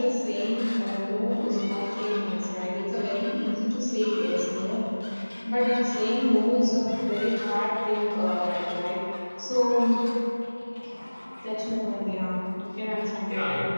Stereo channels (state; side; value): inverted; both; correlation -1.00